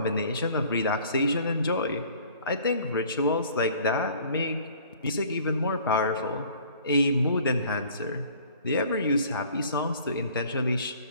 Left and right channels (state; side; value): inverted; both; correlation -0.52